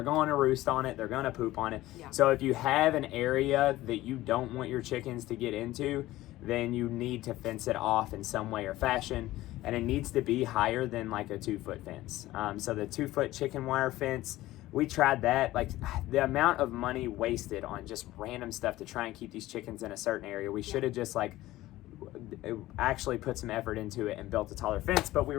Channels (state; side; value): quieter; right; 16.5 dB